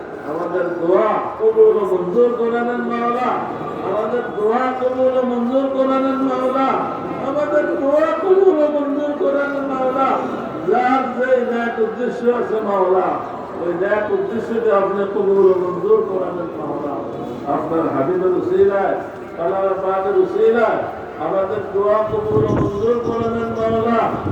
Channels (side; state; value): both; identical; correlation 1.00